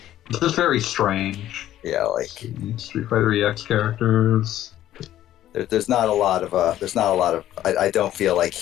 It's just very strange. Yeah, like Street Fighter EX characters. There's not a lot of. I don't feel like.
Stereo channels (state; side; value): quieter; right; 12.8 dB